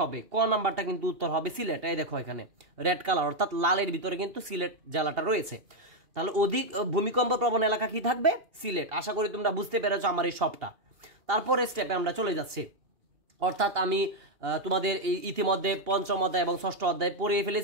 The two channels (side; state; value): left; late; 2.8 ms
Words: হবে, ক নাম্বারটা কিন্তু উত্তর হবে সিলেট। এই দেখো এখানে রেড কালার অর্থাৎ লালের ভিতরে কিন্তু সিলেট জেলাটা রয়েছে। তাহলে অধিক ভূমিকম্প প্রবণ এলাকা কি থাকবে? সিলেট। আশা করি তোমরা বুঝতে পেরেছো আমার এই সবটা। তারপরে স্টেপে আমরা চলে যাচ্ছি, অর্থাৎ আমি তোমাদের এই ইতিমধ্যে পঞ্চম অধ্যায় এবং ষষ্ঠ অধ্যায় পড়িয়ে